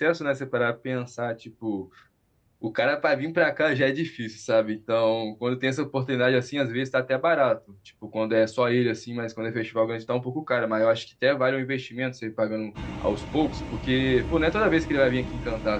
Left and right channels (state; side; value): identical; both; correlation 1.00